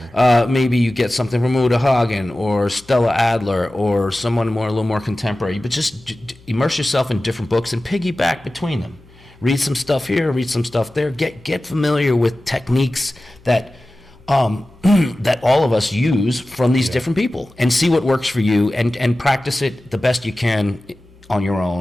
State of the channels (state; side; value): noise; left; hum, 26 dB below the sound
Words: Maybe you get something from Uta Hagen or Stella Adler or someone a little more contemporary. But just immerse yourself in different books and piggyback between them. Read some stuff here, read some stuff there. Get familiar with techniques that that all of us use from these different people, and see what works for you, and practice it the best you can on your